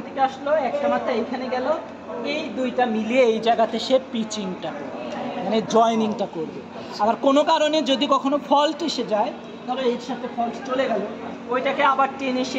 থেকে আসলো, একটা মাথা এইখানে গেল, এই দুইটা মিলিয়ে এই জায়গাতে সে পিচিংটা করবে, মানে জয়েনিংটা করবে। আবার কোনো কারণে যদি কখনো ফল্ট এসে যায়, ধরো এর সাথে ফল্ট চলে গেল, ওইটাকে আবার টেনে সে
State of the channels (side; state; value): both; identical; correlation 1.00